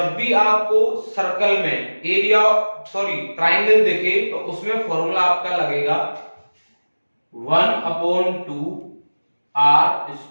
भी आपको सर्कल में एरिया ट्राइंगल दिखे तो उसमें फॉर्मूला आपका लगेगा 1/2 आर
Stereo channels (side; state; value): both; inverted; correlation -1.00